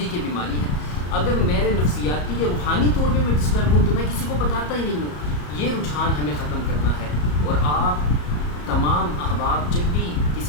یہ بیماری ہے، اگر میرے نفسیاتی یا روحانی طور پہ میں ڈسٹرب ہوں تو میں کسی کو بتاتا ہی نہیں ہوں۔ یہ رجحان ہمیں ختم کرنا ہے، اور آپ تمام احباب جب بھی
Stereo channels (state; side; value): late; right; 34 ms